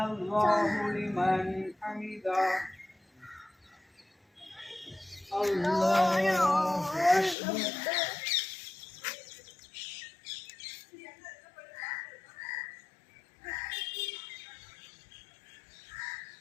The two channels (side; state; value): right; drops out; at 7.4 s